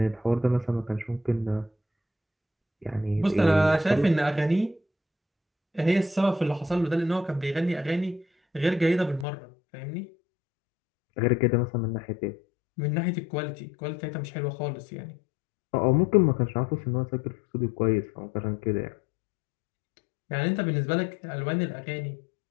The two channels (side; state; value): right; drops out; at 9.2 s